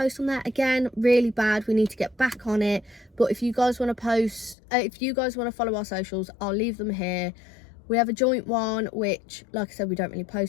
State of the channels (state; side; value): drops out; right; at 4.5 s